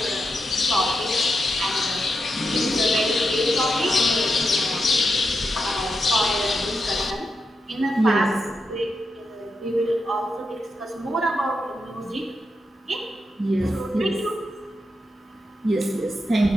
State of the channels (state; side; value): normal; both; correlation 0.86